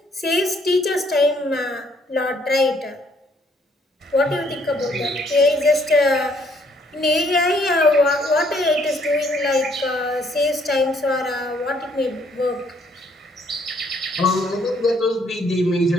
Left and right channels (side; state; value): both; normal; correlation 0.66